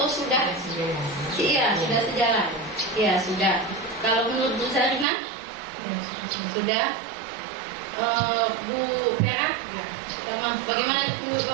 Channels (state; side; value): drops out; left; at 5.1 s